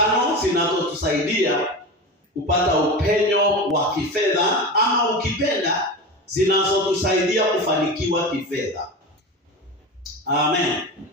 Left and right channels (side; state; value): both; normal; correlation 0.26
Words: zinazotusaidia kupata upenyo wa kifedha, ama ukipenda zinazotusaidia kufanikiwa kifedha. Amen.